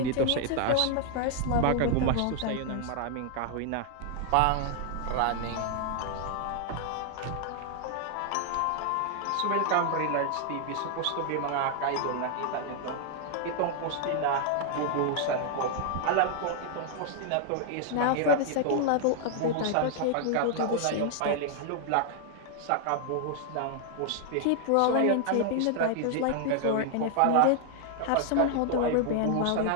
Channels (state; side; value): different; both; correlation 0.00